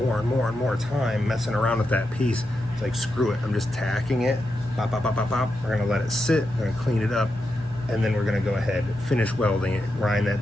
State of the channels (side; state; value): both; normal; correlation 0.87